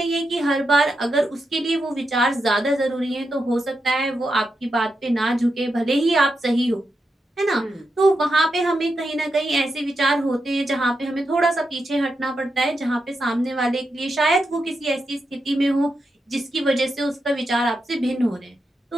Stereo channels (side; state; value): both; normal; correlation 0.86